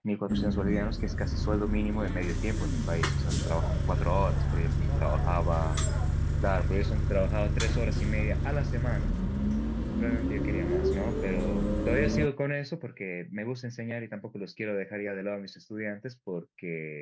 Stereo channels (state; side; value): identical; both; correlation 1.00